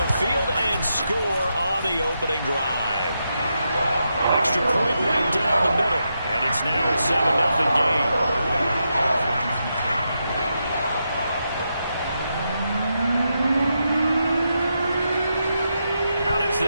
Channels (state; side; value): inverted; both; correlation -0.85